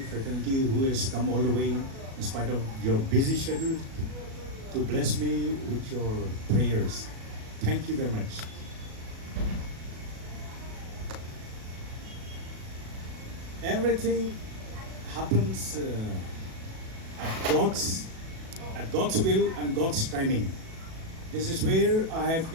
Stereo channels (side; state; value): left; late; 37 ms